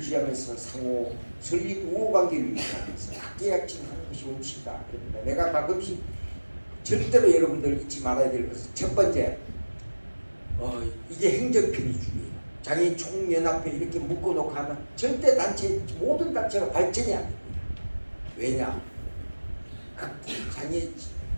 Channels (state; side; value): inverted; both; correlation -1.00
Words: 상호 설립 우호관계를 유지하면서 학계약칭하는 것이 원칙이다. 그럽니다. 내가 가끔씩 절대로 여러분들 잊지 말아야 될 것은 첫 번째 이게 행정편의주의예요. 장애인 총연합회 이렇게 묶어놓고 하면 절대 단체 모든 단체가 발전이 안 됩니다. 왜냐? 각 장애